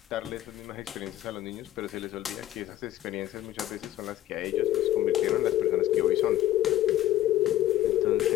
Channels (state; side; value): quieter; right; 13.4 dB